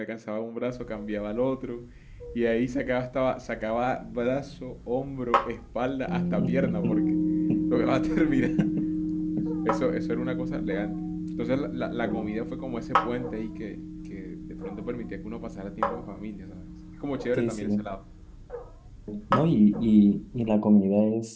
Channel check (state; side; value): identical; both; correlation 1.00